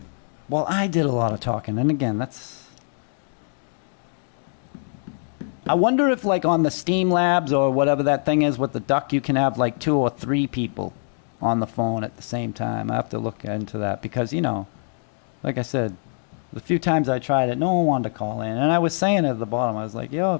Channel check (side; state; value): right; silent; digital silence